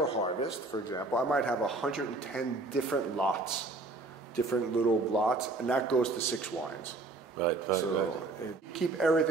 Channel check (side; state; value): left; quieter; 3.3 dB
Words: a harvest, for example, I might have 110 different lots, different little lots, and that goes to 6 wines. Right. Keep